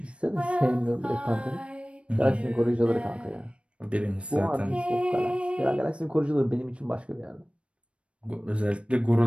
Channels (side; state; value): left; late; 0.060 ms